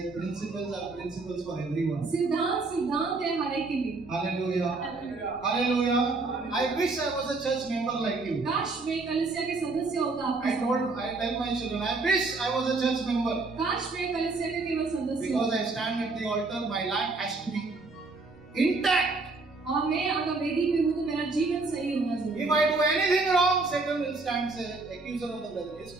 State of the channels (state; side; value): quieter; left; 3.7 dB